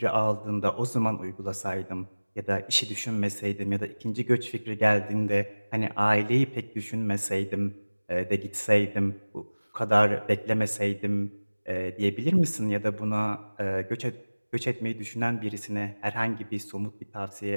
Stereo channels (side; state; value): both; inverted; correlation -1.00